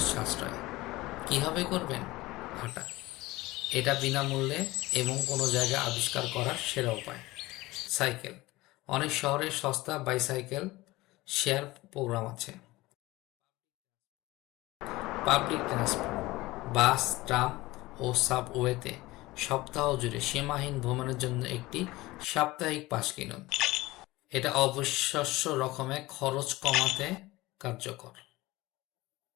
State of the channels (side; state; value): right; quieter; 19.6 dB